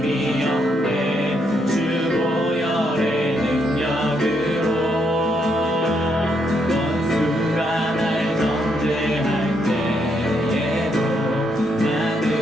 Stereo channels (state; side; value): normal; both; correlation 0.76